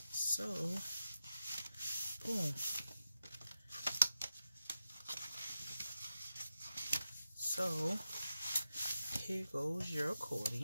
So, boom. So, here goes your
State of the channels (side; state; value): both; inverted; correlation -0.90